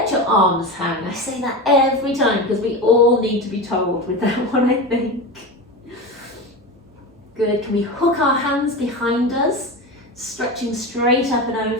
your arms hang. I say that every time because we all need to be told with that one, I think. Good, can we hook our hands behind us, stretching straight up and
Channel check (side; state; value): both; normal; correlation 0.24